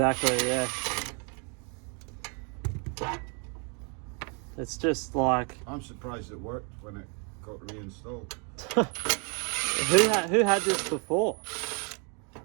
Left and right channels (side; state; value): left; quieter; 36.8 dB